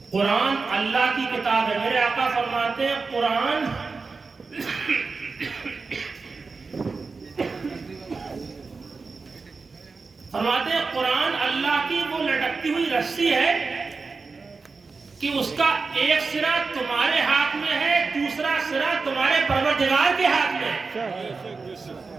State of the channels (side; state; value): left; quieter; 4.4 dB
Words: قرآن اللہ کی کتاب ہے، میرے آقا فرماتے ہیں قرآن قرآن اللہ کی وہ لٹکتی ہوئی رسی ہے کہ اس کا ایک سرا تمہارے ہاتھ میں ہے، دوسرا سرا تمہارے پروردگار کے ہاتھ میں ہے۔